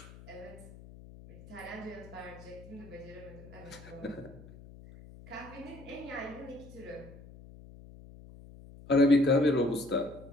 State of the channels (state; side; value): noise; left; hum, 18 dB below the sound